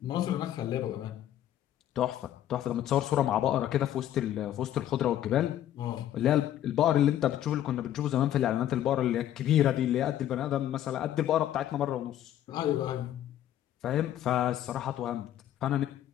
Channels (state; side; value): quieter; right; 11.8 dB